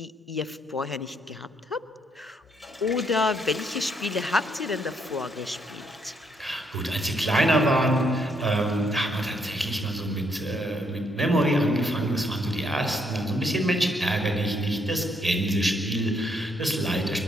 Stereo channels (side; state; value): both; normal; correlation 0.73